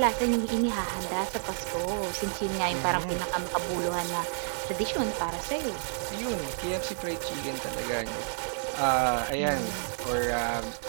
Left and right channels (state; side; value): silent; left; 58 dB below the other